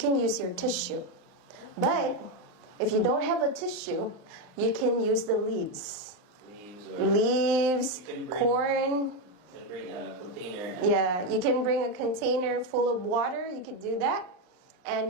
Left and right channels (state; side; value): late; left; 39 ms